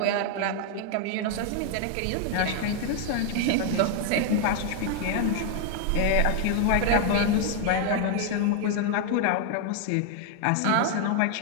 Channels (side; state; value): both; different; correlation 0.00